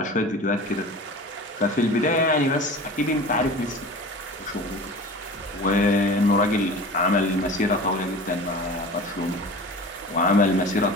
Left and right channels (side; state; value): both; normal; correlation 0.37